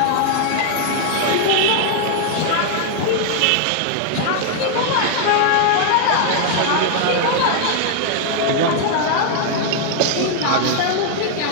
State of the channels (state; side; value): different; both; correlation 0.00